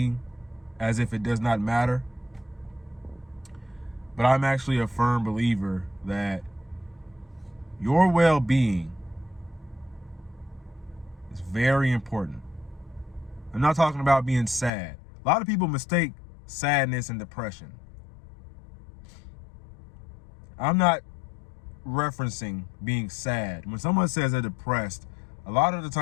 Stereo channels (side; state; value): right; drops out; at 14.7 s